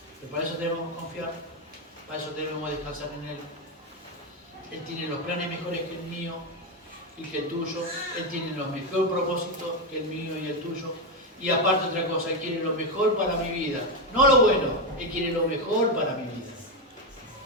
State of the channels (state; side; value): normal; both; correlation 0.08